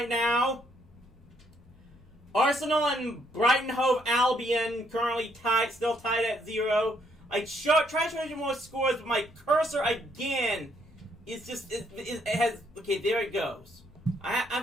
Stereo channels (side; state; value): both; normal; correlation 0.71